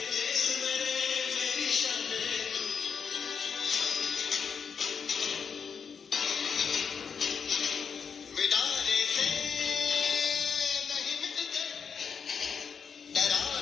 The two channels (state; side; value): quieter; right; 6.4 dB